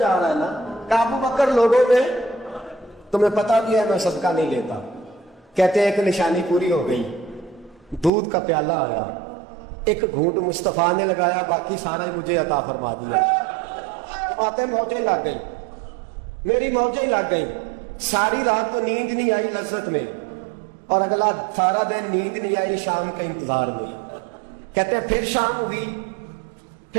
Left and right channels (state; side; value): drops out; left; at 8.1 s